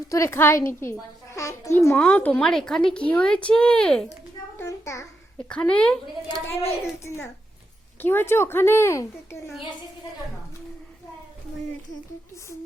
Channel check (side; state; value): both; normal; correlation 0.84